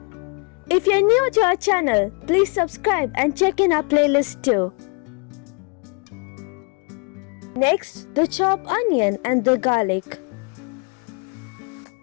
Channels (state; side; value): quieter; right; 35.1 dB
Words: If you're new to our channel, please subscribe and check in our playlist too. Next, the chopped onion and the garlic.